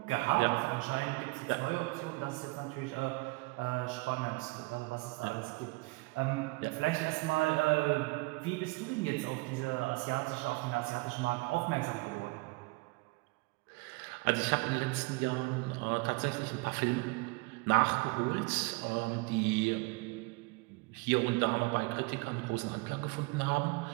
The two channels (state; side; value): quieter; left; 25.7 dB